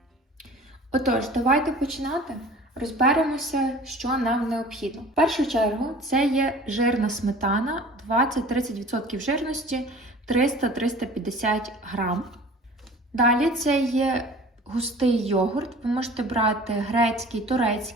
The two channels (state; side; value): normal; both; correlation 0.44